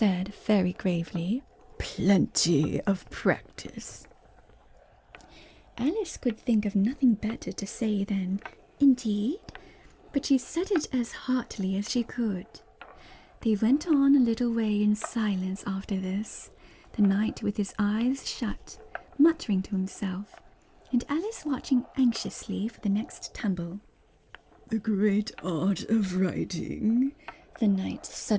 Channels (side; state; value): both; identical; correlation 1.00